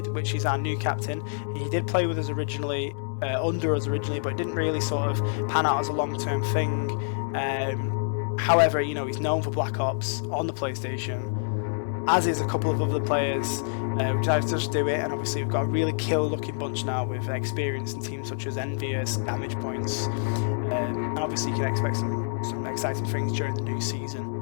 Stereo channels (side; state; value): right; silent; digital silence